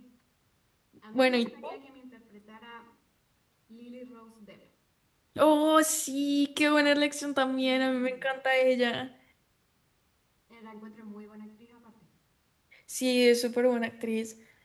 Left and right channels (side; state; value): both; identical; correlation 1.00